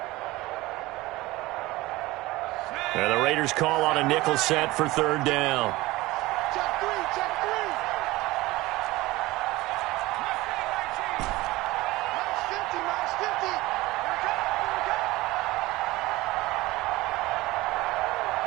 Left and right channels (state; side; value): quieter; left; 19.5 dB